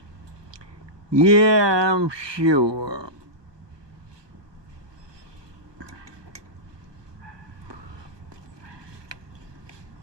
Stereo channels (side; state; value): left; late; 1.2 ms